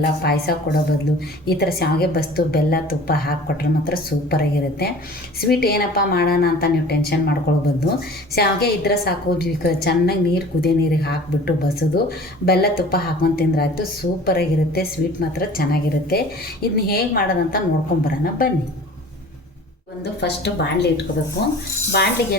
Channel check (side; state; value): both; normal; correlation 0.44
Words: ಪಾಯಸ ಕೊಡೋ ಬದಲು ಈ ಥರ ಶಾವಿಗೆ ಬಸ್ತು ಬೆಲ್ಲ ತುಪ್ಪ ಹಾಕಿಕೊಟ್ರೆ ಮಾತ್ರ ಸೂಪರಾಗಿರುತ್ತೆ. ಸ್ವೀಟ್ ಏನಪ್ಪ ಮಾಡೋಣ ಅಂತ ನೀವು ಟೆನ್ಷನ್ ಮಾಡ್ಕೊಳ್ಬೋದು. ಶಾವಿಗೆ ಇದ್ರೆ ಸಾಕು, ಚೆನ್ನಾಗಿ ನೀರು ಕುದಿಯೋ ನೀರಿಗೆ ಹಾಕಿಬಿಟ್ಟು ಬಸೋದು ಬೆಲ್ಲ ತುಪ್ಪ ಹಾಕೊಂಡು ತಿಂದ್ರೆ ಆಯಿತು, ಸೂಪರಾಗಿರುತ್ತೆ. ಸ್ವೀಟ್ ಮಾತ್ರ ಚೆನ್ನಾಗಿರುತ್ತೆ. ಇದನ್ನ ಹೇಗೆ ಮಾಡೋದಂತ ನೋಡ್ಕೊಂಬರೋಣ ಬನ್ನಿ. ಫಸ್ಟು ಬಾಣಲೆ ಇಟ್ಕೋಬೇಕು. ಬಾಣಲೆಗೆ